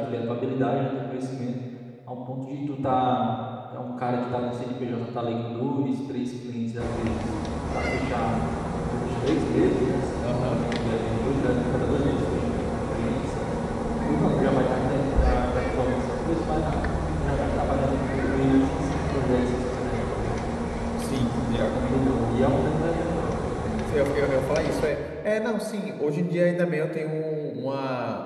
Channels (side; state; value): both; identical; correlation 1.00